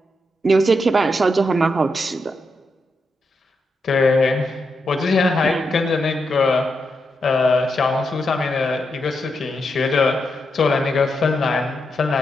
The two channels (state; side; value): normal; both; correlation 0.84